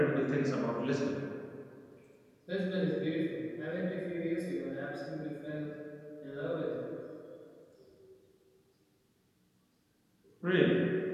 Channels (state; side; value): identical; both; correlation 1.00